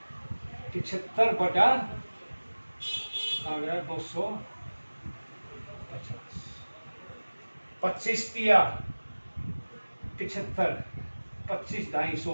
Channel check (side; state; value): both; inverted; correlation -1.00